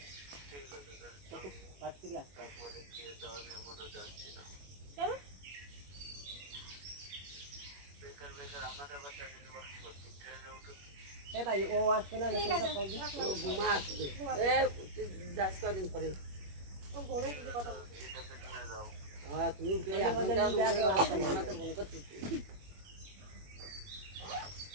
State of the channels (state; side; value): late; left; 21 ms